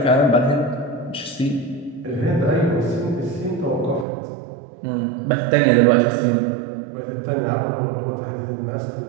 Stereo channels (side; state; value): left; drops out; at 4.0 s